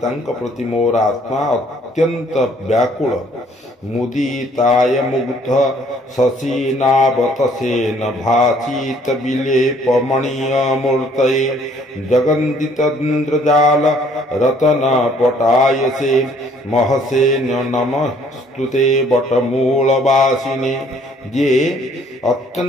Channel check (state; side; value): normal; both; correlation 0.61